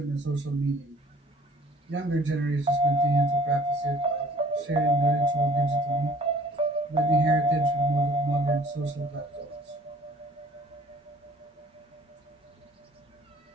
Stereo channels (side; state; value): both; normal; correlation 0.53